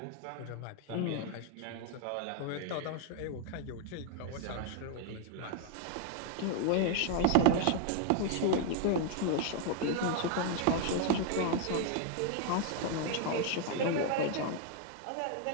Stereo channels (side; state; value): both; different; correlation 0.00